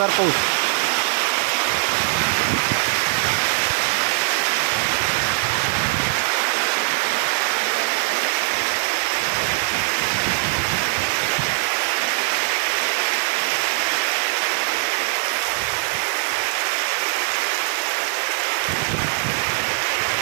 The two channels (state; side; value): silent; left; 65 dB below the other